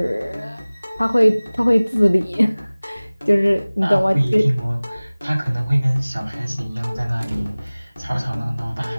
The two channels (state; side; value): inverted; both; correlation -0.99